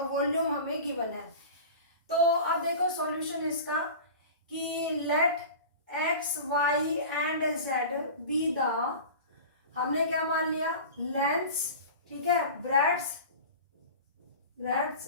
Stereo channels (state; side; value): inverted; both; correlation -0.35